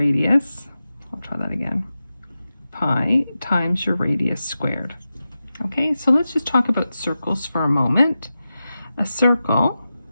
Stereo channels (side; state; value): both; inverted; correlation -0.92